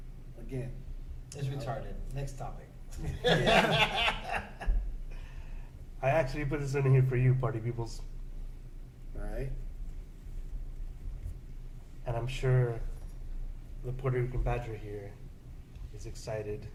again, It's retarded. Next topic. I actually put this in here for you, party peoples, all right. and I'm sure the Puerto Rican Badger here is excited.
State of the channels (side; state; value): both; identical; correlation 1.00